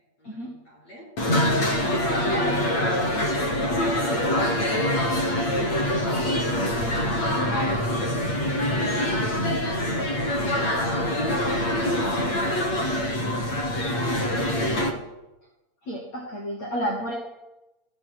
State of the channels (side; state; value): right; late; 8.5 ms